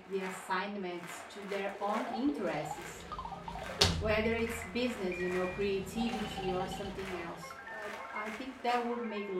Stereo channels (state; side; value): identical; both; correlation 1.00